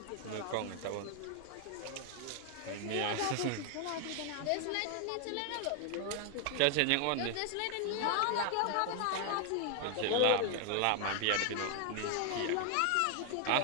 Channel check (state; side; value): different; both; correlation 0.00